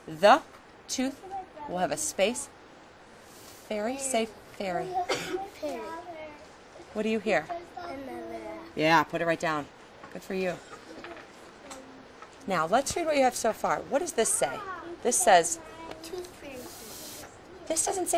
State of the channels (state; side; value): identical; both; correlation 1.00